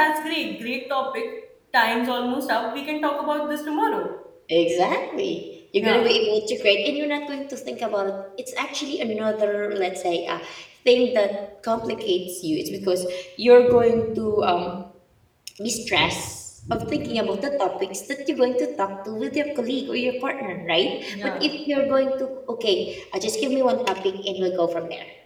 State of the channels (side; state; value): both; identical; correlation 1.00